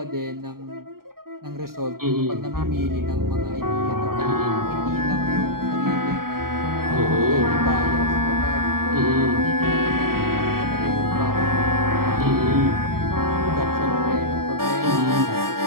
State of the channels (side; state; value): left; late; 0.93 ms